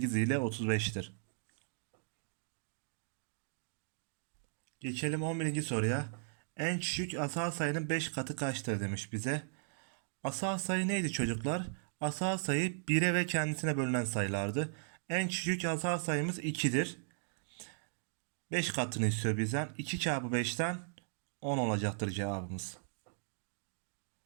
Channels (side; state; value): left; silent; digital silence